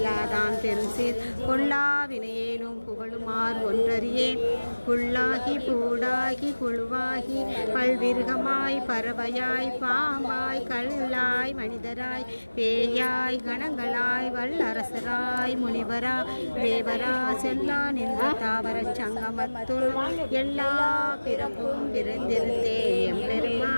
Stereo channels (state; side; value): inverted; both; correlation -1.00